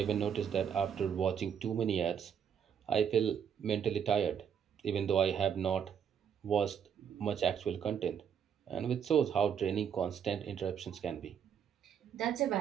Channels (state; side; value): quieter; left; 8.0 dB